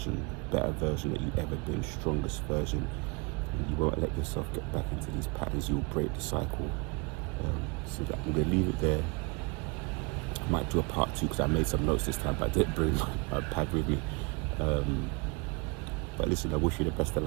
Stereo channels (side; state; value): left; quieter; 29.3 dB